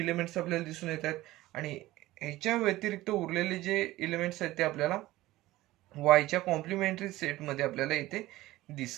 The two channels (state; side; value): quieter; left; 17.2 dB